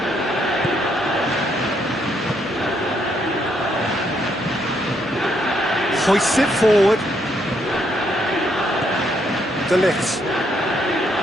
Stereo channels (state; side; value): normal; both; correlation 0.74